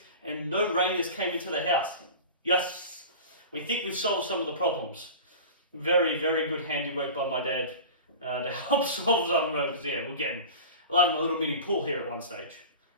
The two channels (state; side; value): inverted; both; correlation -0.34